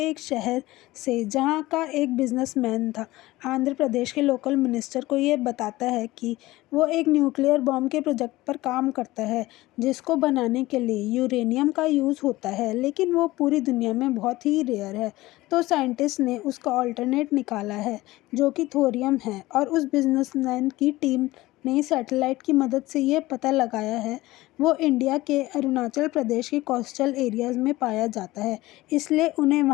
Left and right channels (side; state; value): right; quieter; 18.5 dB